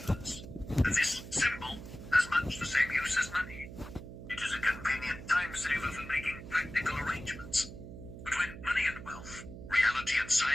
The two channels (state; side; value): noise; right; hum, 12 dB below the sound